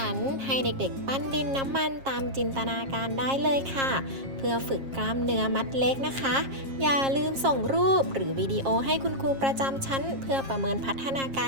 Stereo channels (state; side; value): late; left; 7.4 ms